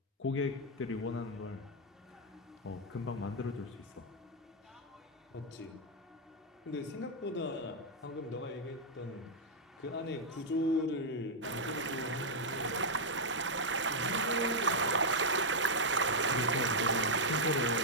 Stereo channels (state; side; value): normal; both; correlation -0.04